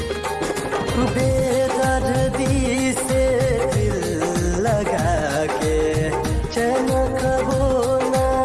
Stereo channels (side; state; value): both; identical; correlation 1.00